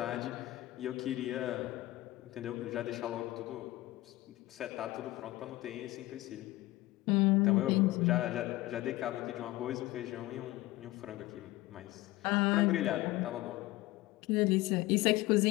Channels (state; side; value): quieter; right; 18.3 dB